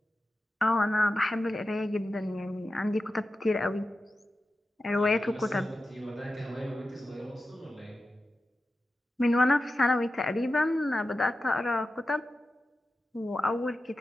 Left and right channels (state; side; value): normal; both; correlation 0.92